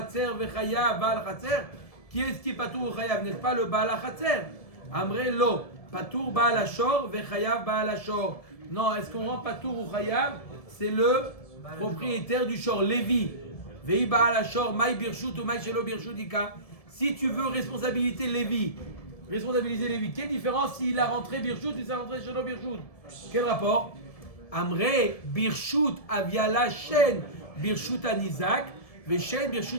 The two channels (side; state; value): right; late; 1.7 ms